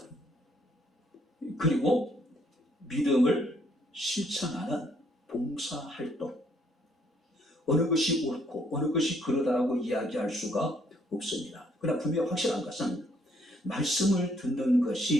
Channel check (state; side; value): normal; both; correlation 0.67